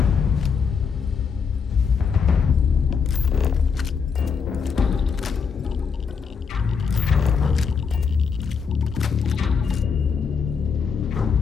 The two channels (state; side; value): quieter; right; 6.0 dB